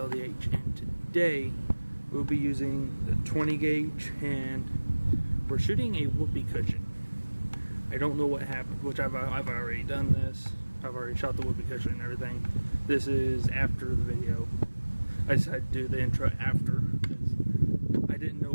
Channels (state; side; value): inverted; both; correlation -1.00